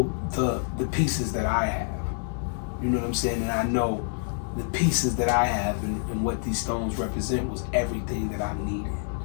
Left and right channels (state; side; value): silent; right; digital silence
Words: the pieces that I have. You know what I'm saying? And I know the pieces that I have and what these stones represent was everything that I needed.